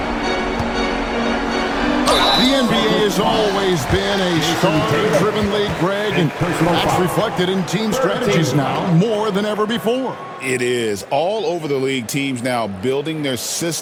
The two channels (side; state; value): both; identical; correlation 1.00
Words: The NBA has always been a star-driven league, Greg, and that's reflected in team strategies now more than ever before. It is. All over the league, teams now building their